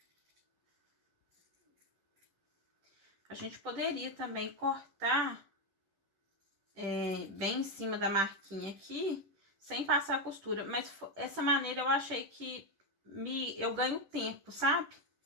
A gente poderia também cortar bem em cima da marquinha aqui, sem passar a costura, mas essa maneira eu achei que eu ganho tempo, sabe?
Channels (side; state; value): left; late; 10 ms